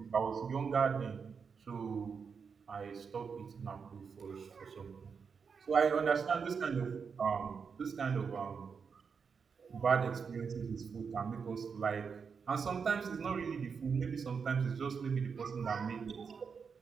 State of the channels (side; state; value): left; quieter; 5.9 dB